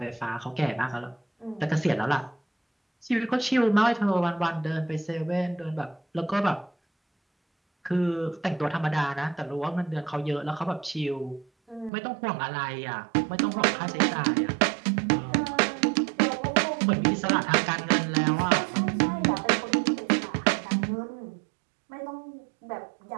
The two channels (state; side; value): drops out; left; at 11.9 s